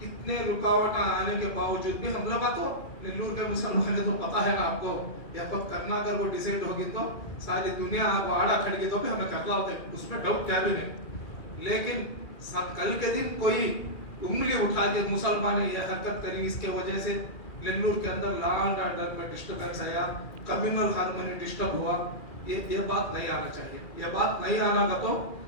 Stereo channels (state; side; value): late; right; 2.4 ms